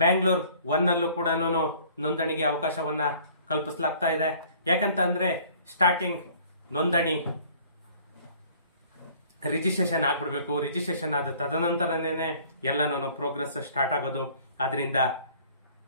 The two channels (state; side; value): inverted; both; correlation -0.53